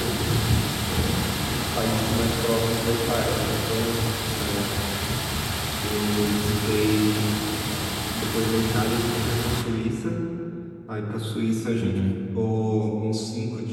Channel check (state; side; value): identical; both; correlation 1.00